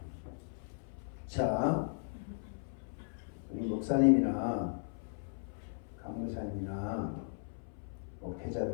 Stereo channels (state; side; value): silent; right; 53 dB below the other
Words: 자, 우리 목사님이나 강목사님이나